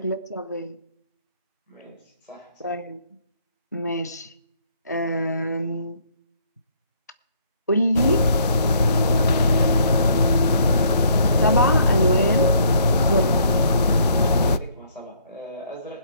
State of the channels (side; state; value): both; inverted; correlation -0.65